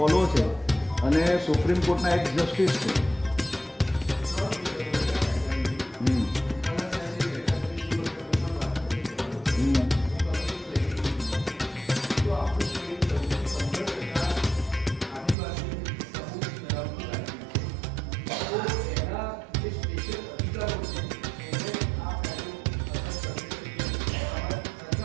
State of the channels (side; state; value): left; drops out; at 15.4 s